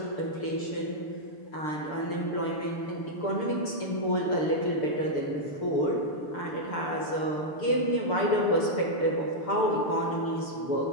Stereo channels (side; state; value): right; late; 6.7 ms